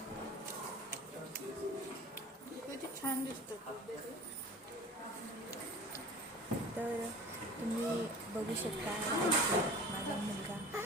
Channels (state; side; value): normal; both; correlation 0.41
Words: किती छान दिसतं. तर तुम्ही बघू शकता माझा मुलगा